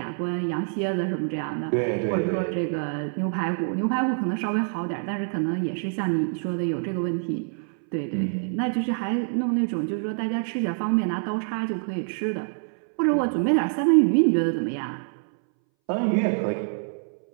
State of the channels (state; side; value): silent; left; 61 dB below the other